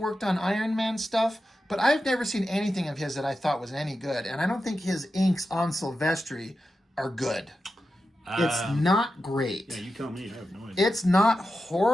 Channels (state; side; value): normal; both; correlation 0.90